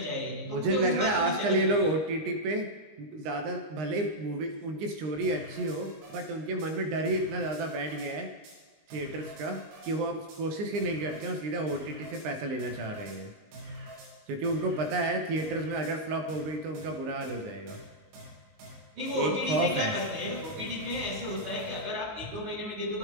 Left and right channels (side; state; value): left; late; 19 ms